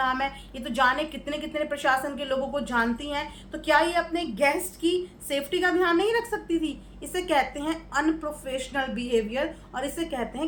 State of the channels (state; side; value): identical; both; correlation 1.00